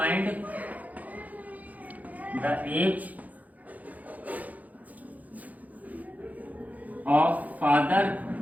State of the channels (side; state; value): left; late; 0.078 ms